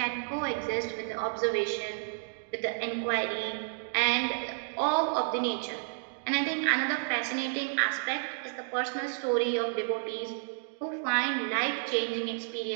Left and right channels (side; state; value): left; silent; digital silence